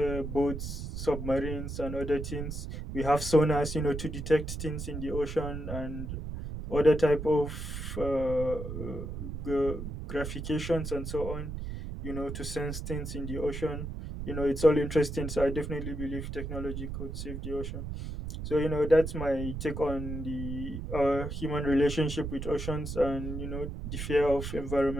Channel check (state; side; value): noise; right; rumble, 6 dB below the sound